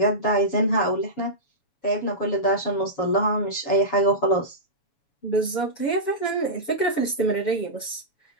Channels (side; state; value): right; late; 7.1 ms